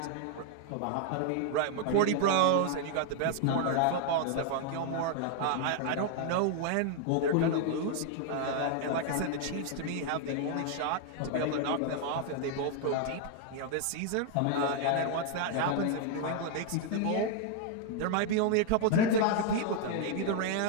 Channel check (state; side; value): different; both; correlation 0.00